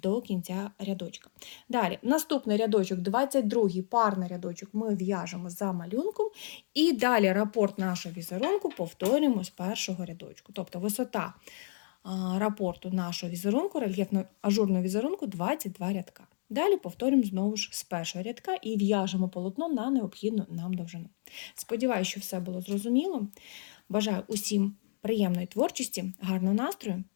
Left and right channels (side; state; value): right; silent; digital silence